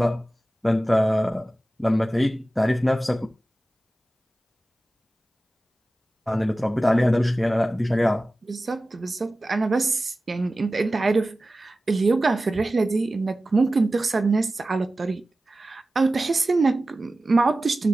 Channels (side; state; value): both; normal; correlation 0.95